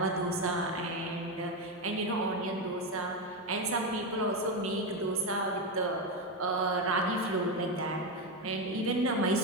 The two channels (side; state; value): both; normal; correlation 0.11